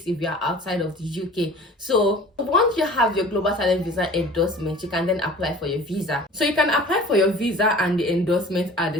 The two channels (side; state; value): both; normal; correlation 0.44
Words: if you are outside of the UK. So once you have your global talent visa endorsement, you can then apply for your visa. So you can apply for your visa and the endorsement at